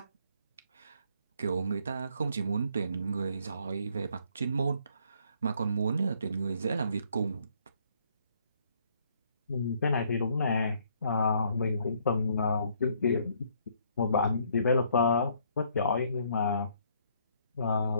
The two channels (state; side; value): inverted; both; correlation -0.66